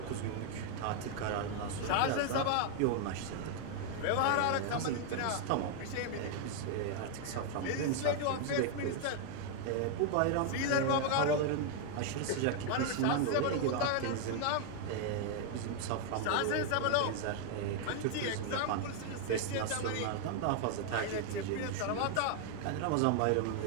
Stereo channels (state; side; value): different; both; correlation 0.00